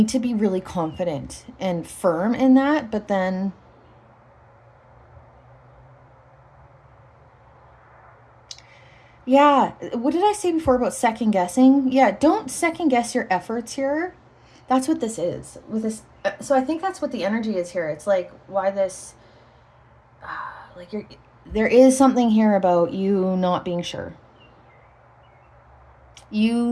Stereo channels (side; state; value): both; identical; correlation 1.00